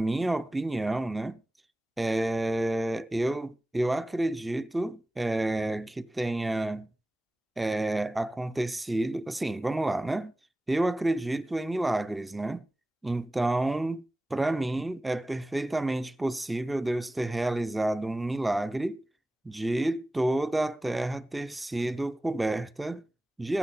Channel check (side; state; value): both; normal; correlation 0.97